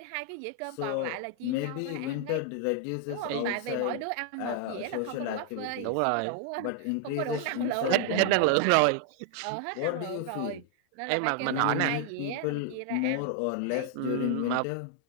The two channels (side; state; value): both; different; correlation 0.00